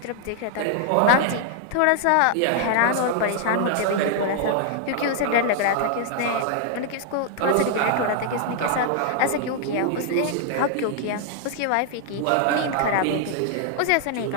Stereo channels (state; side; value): different; both; correlation 0.00